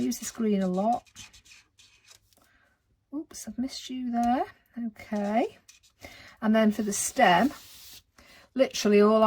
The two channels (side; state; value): both; identical; correlation 1.00